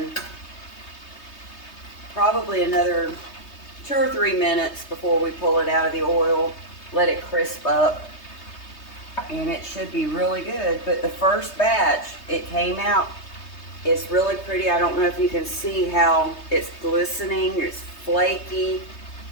probably another 2 or 3 minutes before we pull it out of the oil. Let it crisp up. And it should be really good. But the first batch, it came out, it's really pretty. I don't know if you can see how it's glistening, it's flaky.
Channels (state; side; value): late; right; 3.2 ms